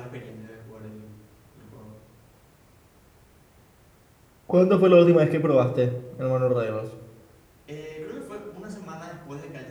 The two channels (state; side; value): identical; both; correlation 1.00